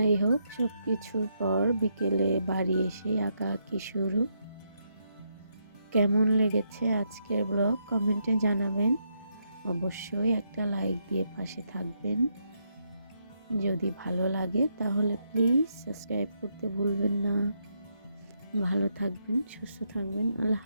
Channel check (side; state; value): both; inverted; correlation -0.79